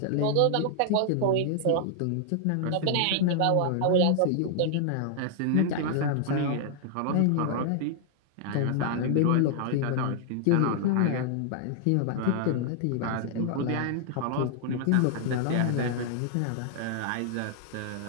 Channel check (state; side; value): different; both; correlation -0.01